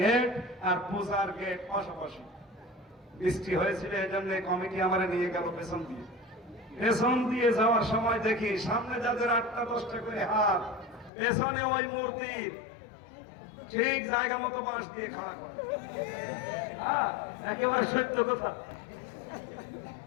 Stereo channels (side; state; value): right; drops out; at 11.1 s